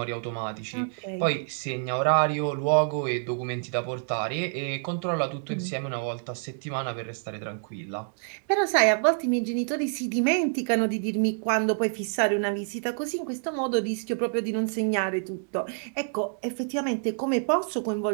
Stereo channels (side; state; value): left; silent; 60 dB below the other